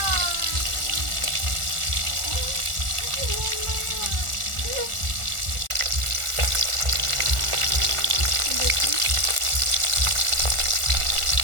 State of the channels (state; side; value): late; left; 1.4 ms